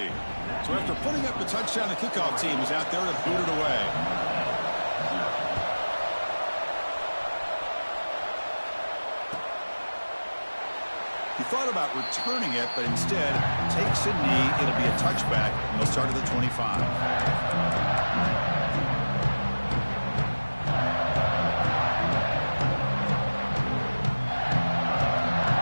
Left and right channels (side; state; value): both; inverted; correlation -1.00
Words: So after putting up the touchdown, the kickoff team is out there to boot it away. He thought about returning it, but instead takes a knee. It'll be a touchback, and they'll start at the 25.